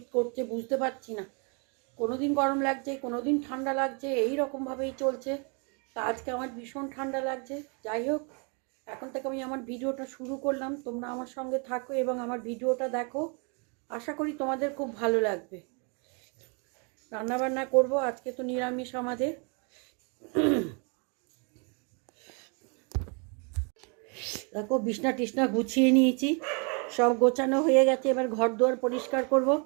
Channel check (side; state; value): left; quieter; 35.5 dB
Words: করছে, বুঝতে পারছি না, কোনো দিন গরম লাগছে, কোনো দিন ঠান্ডা লাগছে, এই রকমভাবেই চলছে। তা আজকে আমার ভীষণ ঠান্ডা লাগছে। যাই হোক, এখন থেকে আমি আমার ভিডিওটা শুরু করলাম। তোমরা আমার সঙ্গে থাকো এবং আমার ভিডিওটা দেখো। আশা করি তোমাদের খুব ভালো লাগবে। রান্নাবান্না করব, আজকে তো নিরামিষ আমাদের। দেখো, বিছনা টিছনা গুছিয়ে নিয়েছি, সব গোছানো হয়ে গেছে। এবার ঘর দুয়ার পরিষ্কার করব।